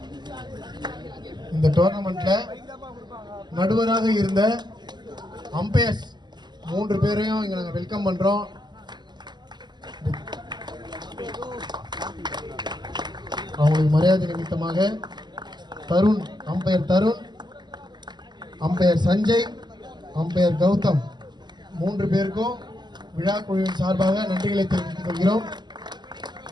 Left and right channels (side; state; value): left; late; 0.21 ms